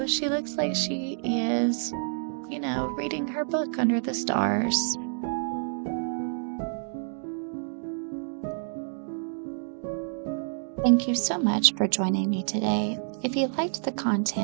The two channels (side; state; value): left; silent; digital silence